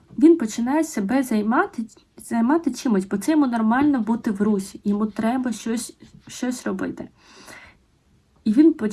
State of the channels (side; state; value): both; identical; correlation 1.00